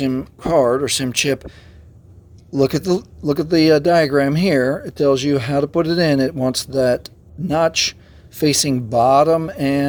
card or SIM chip, look at the diagram here. It tells you how to put it in. It wants that notch facing bottom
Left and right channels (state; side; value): identical; both; correlation 1.00